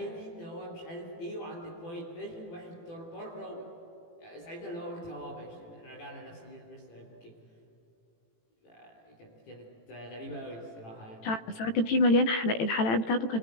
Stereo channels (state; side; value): late; right; 18 ms